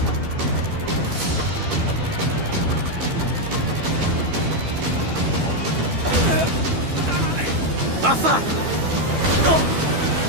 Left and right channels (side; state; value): left; late; 12 ms